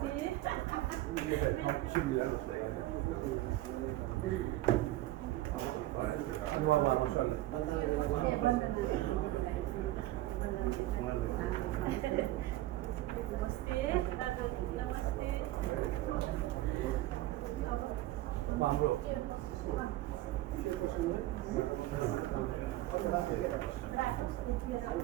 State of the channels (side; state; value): left; quieter; 16.1 dB